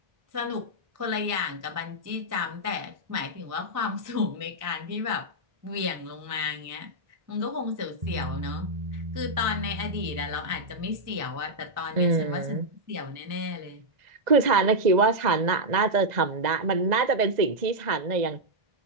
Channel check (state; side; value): late; left; 2.0 ms